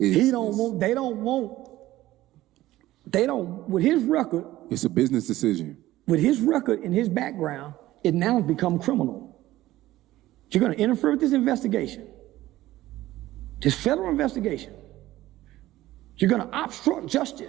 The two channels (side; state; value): left; quieter; 15.8 dB